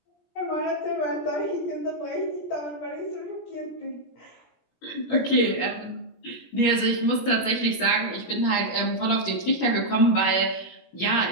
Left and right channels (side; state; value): right; late; 17 ms